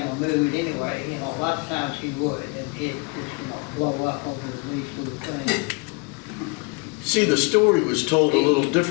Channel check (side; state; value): right; quieter; 29.5 dB